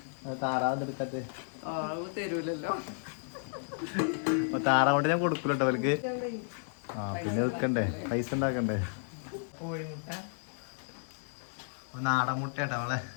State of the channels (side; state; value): right; silent; digital silence